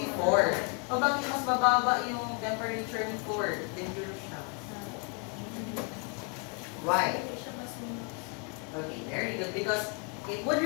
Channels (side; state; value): right; quieter; 36.6 dB